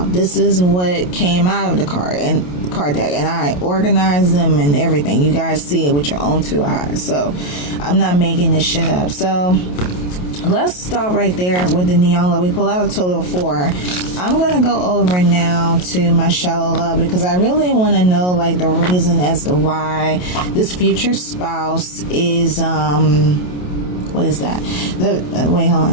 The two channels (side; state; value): right; late; 28 ms